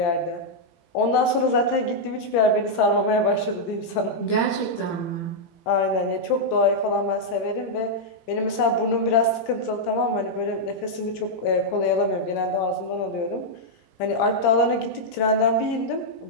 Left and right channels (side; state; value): right; late; 18 ms